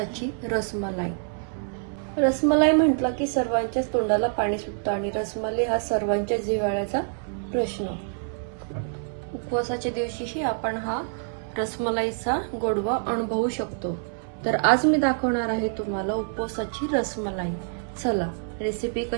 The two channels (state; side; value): silent; left; 61 dB below the other